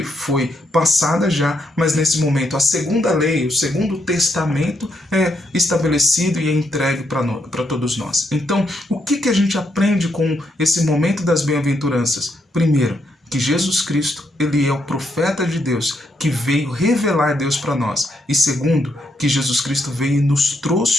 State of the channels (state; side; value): normal; both; correlation 0.77